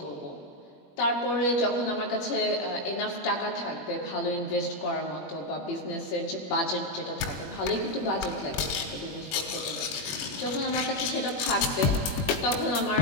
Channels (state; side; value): late; right; 21 ms